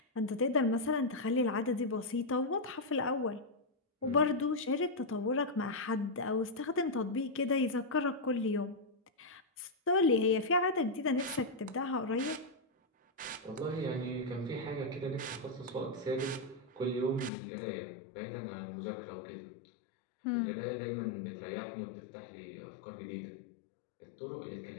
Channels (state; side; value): drops out; right; at 17.3 s